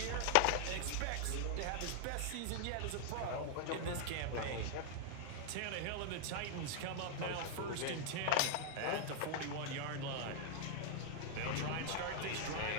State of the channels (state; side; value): different; both; correlation 0.00